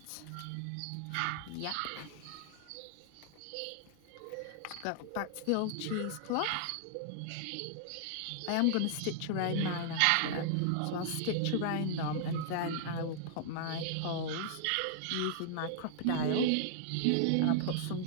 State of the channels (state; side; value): different; both; correlation -0.01